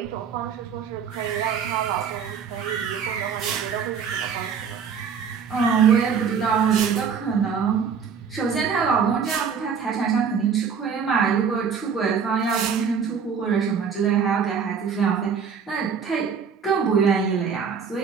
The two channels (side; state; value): left; quieter; 6.6 dB